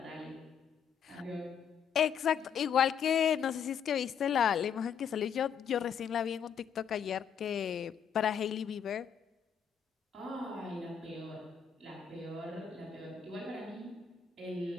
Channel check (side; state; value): right; quieter; 7.6 dB